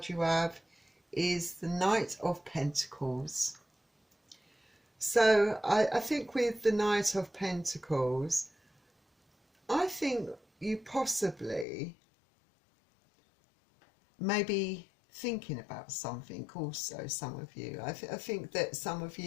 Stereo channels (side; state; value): right; drops out; at 11.7 s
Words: you have is the Knight of Pentacles. So I think with the Knight of Pentacles, I think you possibly maybe thinking about something also, some of you. I think that some of